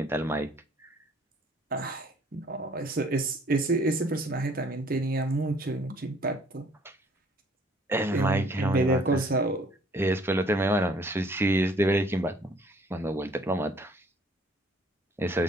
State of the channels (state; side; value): normal; both; correlation 0.58